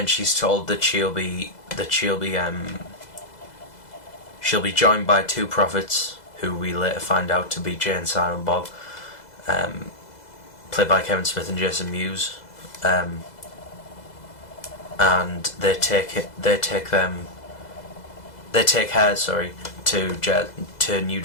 she's told that she'll be joined by 2 prophets, who we later find out to be Jay and Silent Bob, played by Kevin Smith and Jason Mewes. And they take her to New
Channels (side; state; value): right; late; 2.0 ms